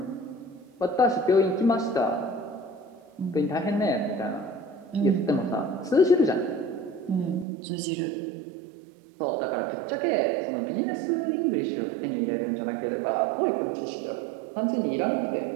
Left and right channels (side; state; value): left; drops out; at 7.5 s